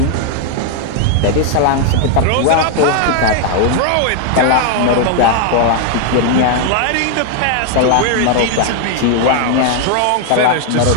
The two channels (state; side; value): different; both; correlation 0.00